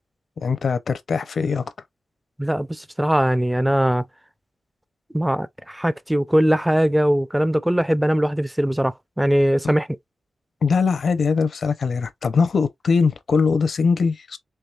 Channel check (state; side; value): normal; both; correlation 0.95